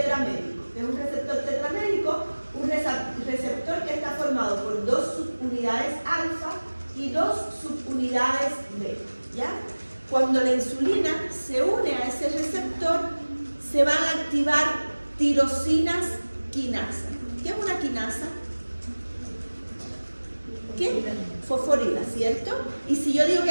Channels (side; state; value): both; inverted; correlation -1.00